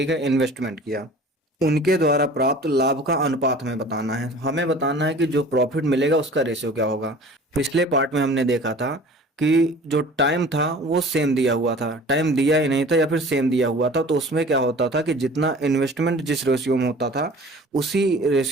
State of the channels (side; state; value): both; normal; correlation 0.44